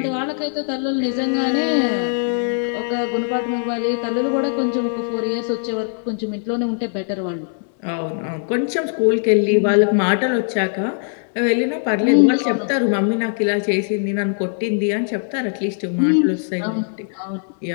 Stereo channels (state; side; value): silent; right; digital silence